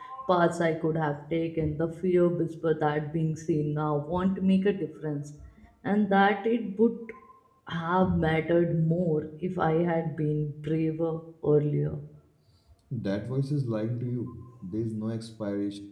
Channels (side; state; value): both; identical; correlation 1.00